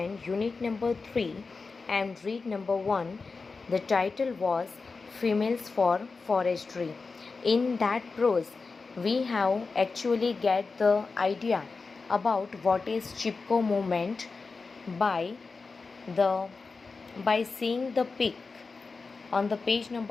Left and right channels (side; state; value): right; quieter; 4.3 dB